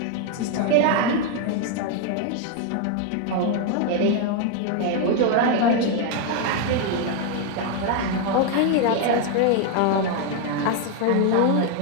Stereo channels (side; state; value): both; different; correlation 0.01